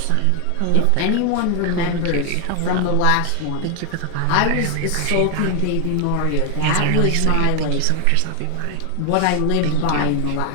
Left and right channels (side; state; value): both; different; correlation 0.00